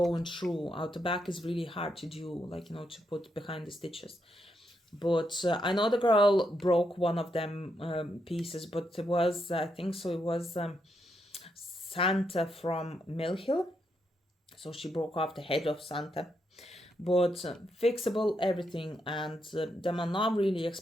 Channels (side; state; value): both; normal; correlation 0.80